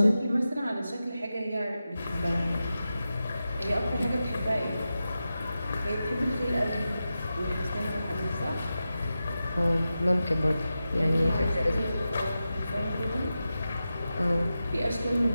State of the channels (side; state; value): both; inverted; correlation -0.92